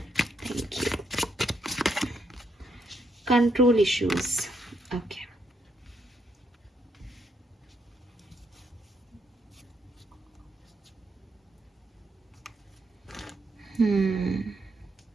thank you. Control issues, okay.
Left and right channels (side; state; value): both; normal; correlation 0.77